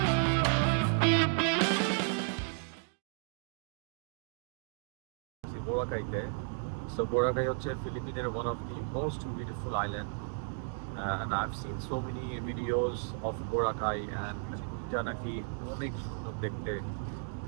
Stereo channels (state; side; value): silent; left; 55 dB below the other